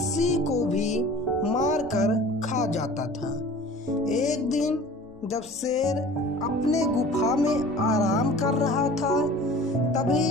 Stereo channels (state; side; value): normal; both; correlation 0.43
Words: को भी मारकर खा जाता था। एक दिन जब शेर अपने गुफा में आराम कर रहा था, तभी